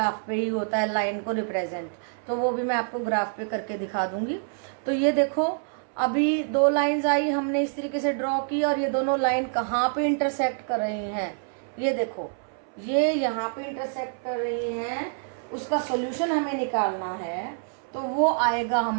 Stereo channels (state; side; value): silent; left; 60 dB below the other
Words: पे ही होता है लाइन को रिप्रेजेंट, तो वो भी मैं आपको ग्राफ पे करके दिखा दूंगी। तो ये देखो अभी 2 लाइंस आई, हमने इस तरीके से ड्रॉ की, और ये दोनों लाइन कहाँ पे इंटरसेक्ट कर रही हैं, ये देखो ये यहाँ पे इंटरसेक्ट कर रही हैं। उसका सॉल्यूशन हमें निकालना है, तो वो आएगा